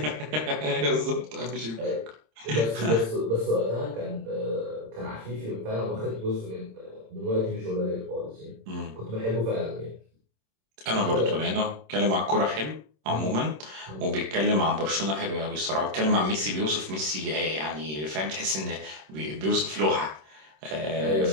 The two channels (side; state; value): left; late; 26 ms